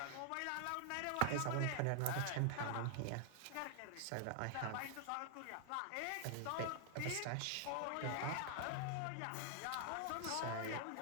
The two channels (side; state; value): both; different; correlation 0.00